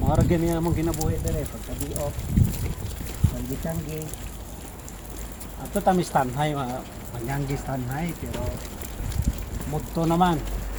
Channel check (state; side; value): identical; both; correlation 1.00